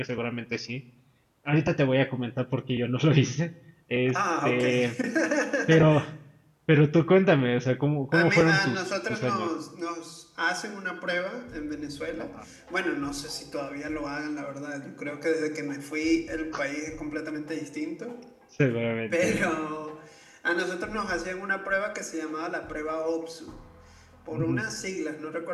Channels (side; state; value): both; identical; correlation 1.00